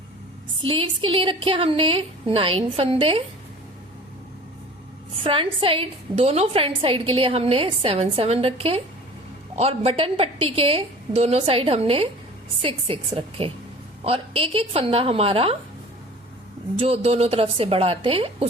स्लीव्स के लिए रखे हमने 9 फंदे, फ्रंट साइड दोनों फ्रंट साइड के लिए हमने 7 रखे और बटन पट्टी के दोनों साइड हमने 6 रखे। और एक एक फंदा हमारा जो दोनों तरफ से बढ़ाते हैं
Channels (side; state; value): both; normal; correlation 0.43